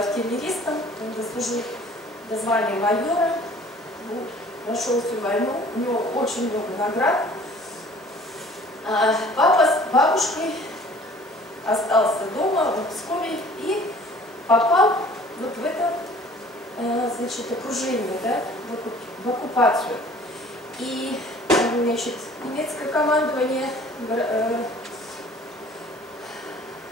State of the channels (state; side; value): normal; both; correlation 0.51